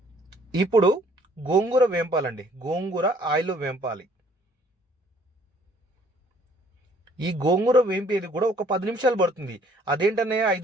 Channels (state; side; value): normal; both; correlation 0.60